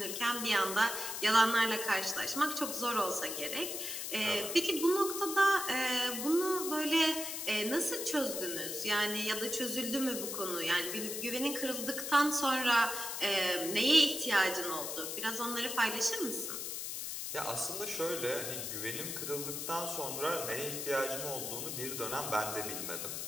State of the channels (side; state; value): left; noise; hiss, 4 dB below the sound